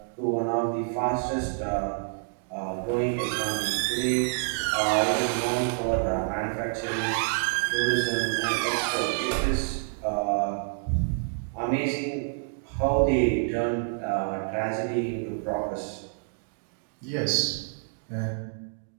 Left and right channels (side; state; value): left; silent; 59 dB below the other